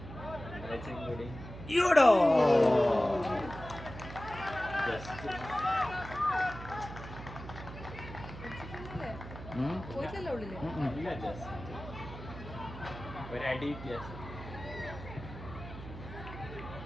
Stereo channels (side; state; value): right; noise; hum, 12 dB below the sound